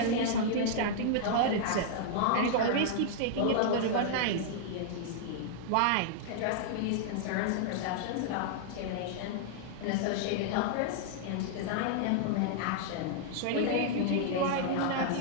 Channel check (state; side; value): different; both; correlation -0.01